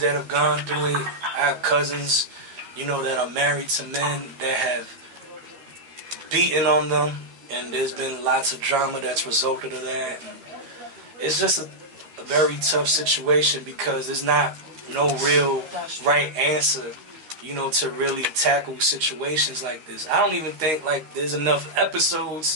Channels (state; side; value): late; left; 13 ms